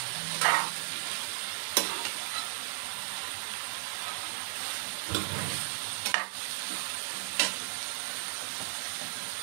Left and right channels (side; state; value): left; silent; digital silence